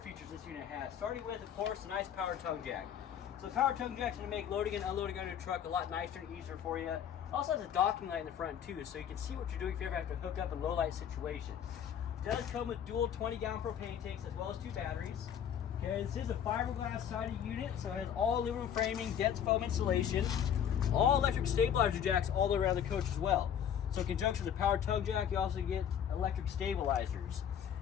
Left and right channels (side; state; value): right; quieter; 8.9 dB